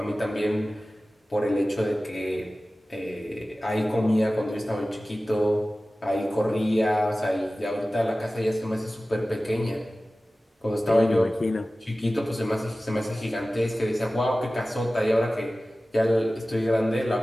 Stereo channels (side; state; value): both; normal; correlation 0.96